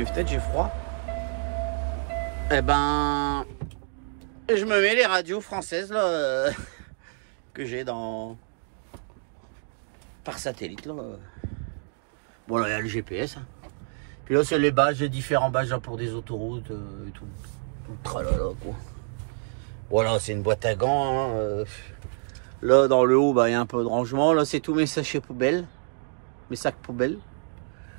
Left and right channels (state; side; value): silent; left; 60 dB below the other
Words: fenêtres, j'ai froid. Eh ben, je me mets les radios françaises là que j'ai par satellite là. Bon là il y a le GPS. Hein. Puis là c'est les badges, les différents badges là, pour des autoroutes et tout. Tout le tralala quoi. Voilà, c'est une boîte à gants. Hein. Là dans le haut, bah, il y a un peu de rangement. Là c'est tous mes sachets poubelles. Mes sacs poubelles.